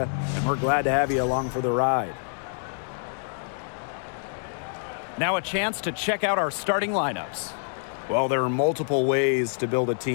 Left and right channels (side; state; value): right; silent; digital silence